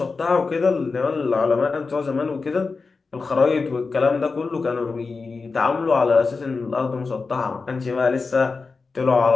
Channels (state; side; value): quieter; right; 4.3 dB